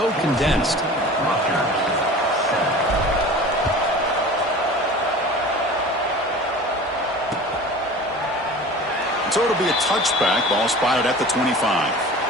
condensed. So it'll be a touchback. Ball spotted at the 25.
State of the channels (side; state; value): both; normal; correlation 0.39